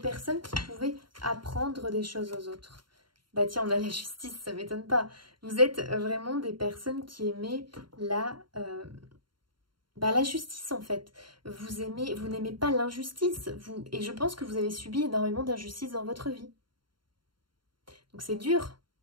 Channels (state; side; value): late; left; 0.72 ms